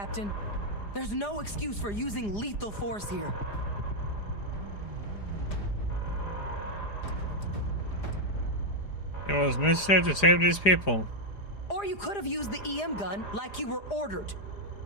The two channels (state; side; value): late; right; 4.9 ms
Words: There's no excuse for using lethal force here. It was necessary to save these people. Or you could have used the EM gun like you were ordered.